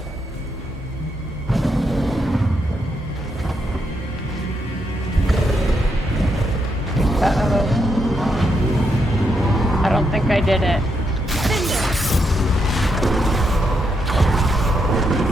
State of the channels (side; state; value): both; normal; correlation 0.80